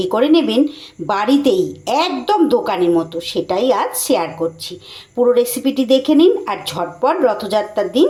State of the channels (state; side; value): identical; both; correlation 1.00